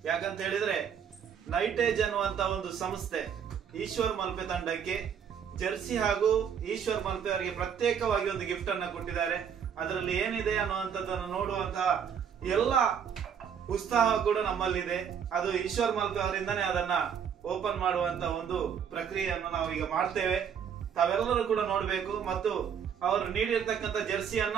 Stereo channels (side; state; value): left; quieter; 7.8 dB